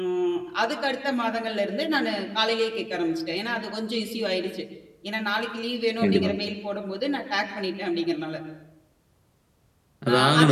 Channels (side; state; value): both; identical; correlation 1.00